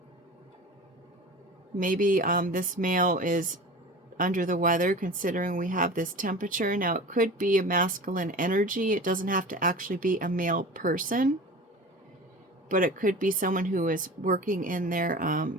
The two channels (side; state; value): both; normal; correlation 0.36